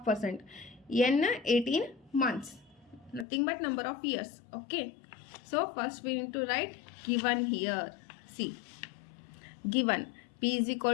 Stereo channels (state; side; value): drops out; right; at 3.2 s